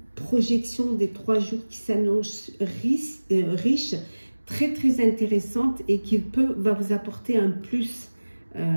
projection des 3 jours qui s'annonce riche, très très intéressante et qui va vous apporter un plus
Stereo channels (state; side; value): inverted; both; correlation -1.00